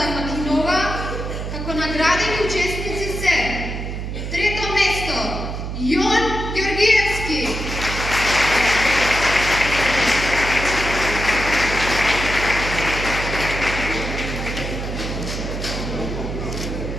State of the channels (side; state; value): right; noise; hum, 5 dB below the sound